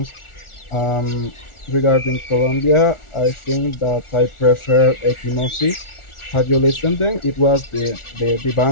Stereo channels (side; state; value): right; late; 1.4 ms